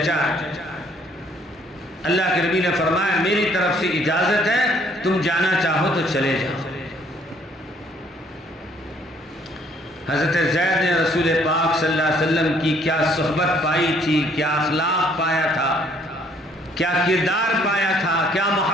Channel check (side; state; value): both; normal; correlation 0.63